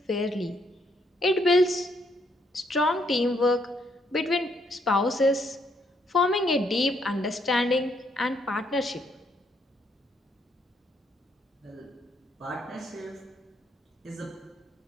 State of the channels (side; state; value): both; normal; correlation 0.72